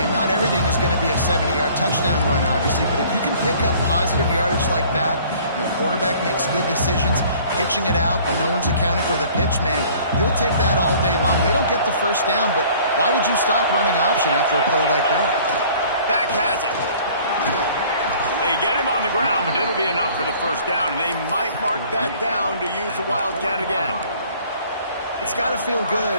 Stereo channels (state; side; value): inverted; both; correlation -0.53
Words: Not everything is going to be a 70-yard touchdown run, obviously, but if you can pick up positive yardage like that, and the quarterback makes good decisions, pitching it out when no one's accounting for the pitch, man, you'll take that all day long. They don't get the first down, but why would you stop running option after a play like that? Back has it. They get him on the ground, but it'll be enough for the first down, and they might mark that down to use the Wildcat again. It's got to feel